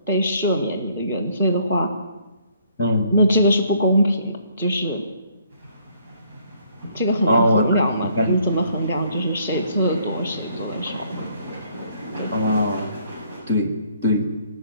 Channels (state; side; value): inverted; both; correlation -0.64